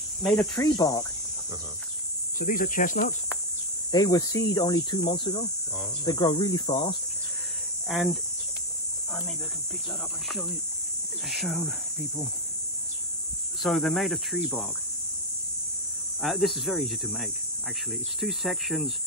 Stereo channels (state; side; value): normal; both; correlation 0.03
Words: made of tree bark. So these are chestnuts. They were seed only 2 months ago. They grow really fast. And maybe I can pick that up and show people. So they're made of tree bark. This is very easy to make, actually. It's 2 sections,